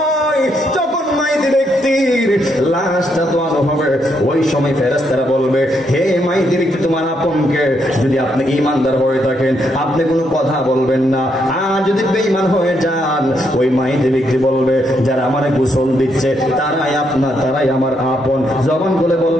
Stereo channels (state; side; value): normal; both; correlation 0.77